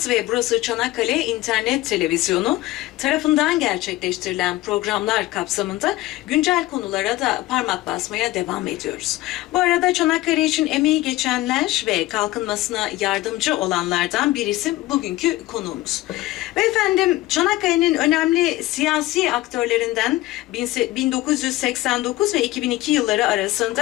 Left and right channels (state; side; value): quieter; right; 17.6 dB